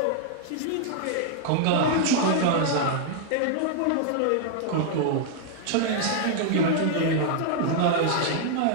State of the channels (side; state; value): both; different; correlation 0.00